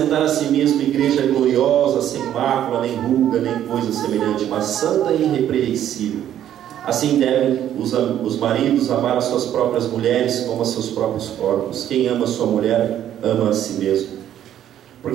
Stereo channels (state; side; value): quieter; left; 11.0 dB